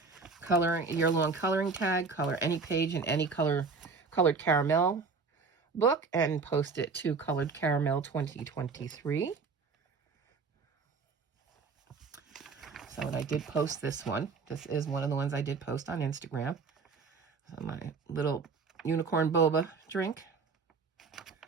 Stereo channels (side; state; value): left; quieter; 4.8 dB